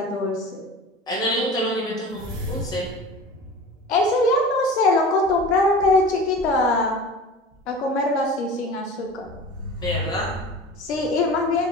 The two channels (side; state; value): both; normal; correlation 0.36